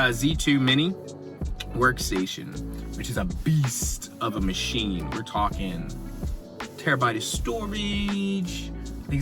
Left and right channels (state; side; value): identical; both; correlation 1.00